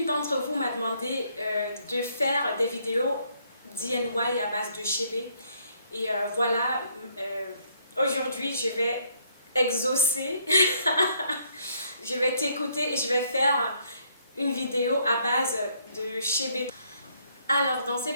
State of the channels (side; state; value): both; inverted; correlation -0.68